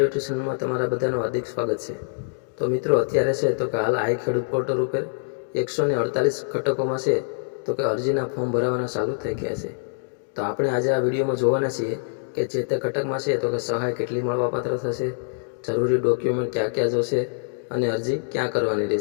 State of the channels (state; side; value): silent; right; digital silence